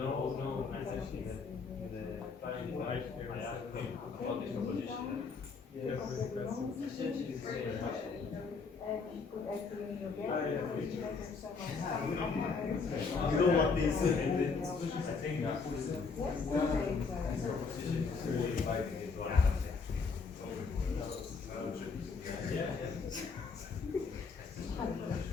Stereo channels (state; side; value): quieter; right; 4.9 dB